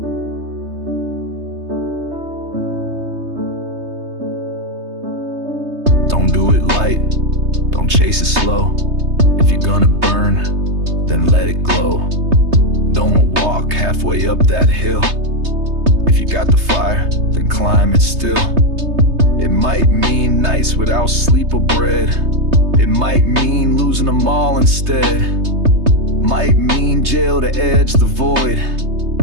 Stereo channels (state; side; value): late; left; 3.3 ms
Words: Don't do it light, don't chase it slow. If you're gonna burn, then let it glow. Don't walk halfway up that hill. If you got the fire, then climb it still. It might mean nights without sleep or bread. It might mean losing them all instead. Might mean jail to edge the void.